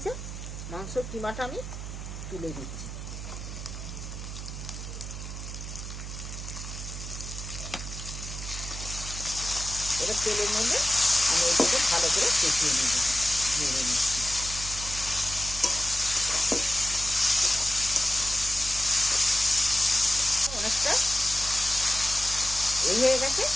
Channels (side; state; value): right; noise; hum, 8 dB below the sound